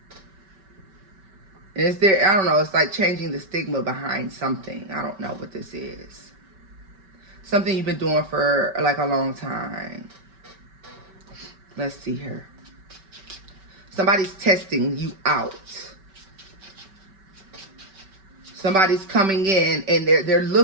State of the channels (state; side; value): late; left; 5.2 ms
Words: Is there, I don't know, it's like changing the stigma behind something. I don't know what this is. Something you've been doing for like a long time. Let's see here. Somebody's testing you out. Somebody's coming in and they're